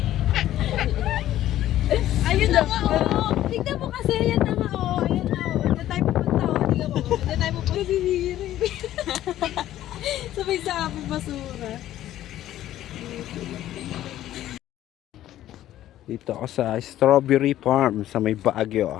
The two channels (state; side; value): quieter; right; 13.2 dB